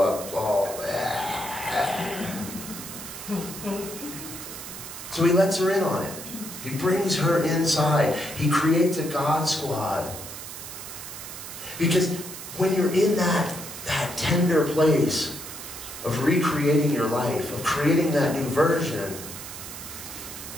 up all. So he lets her in on it. He brings her inside. He creates a God squad. Because when you're in that tender place of recreating your life, of creating that new version,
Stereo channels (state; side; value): noise; right; hiss, 11 dB below the sound